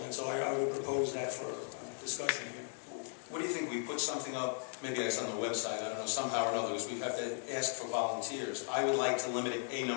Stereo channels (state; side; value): silent; right; 53 dB below the other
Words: And so I would propose that for discussion here. What do you think? We put something up, maybe it's on the website, I don't know, somehow or another, because we have to ask for volunteers. I would like to limit it,